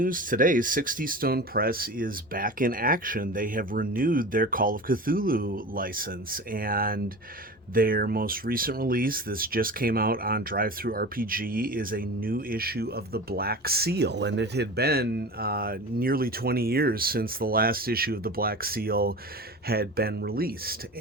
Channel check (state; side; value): normal; both; correlation 0.33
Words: today, Sixtystone Press is back in action. They have renewed their Call of Cthulhu license, and their most recent release, this just came out on DriveThruRPG, is a new issue of the Black Seal. And it had been nearly 20 years since the last issue of the Black Seal had been released.